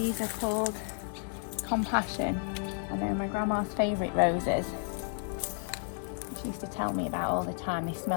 are called Compassion, and they're my grandma's favourite roses. She used to tell me about all the time. They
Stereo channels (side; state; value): right; silent; 55 dB below the other